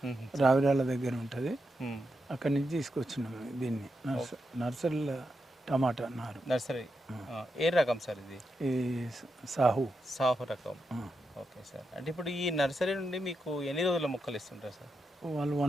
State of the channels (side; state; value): both; normal; correlation 0.85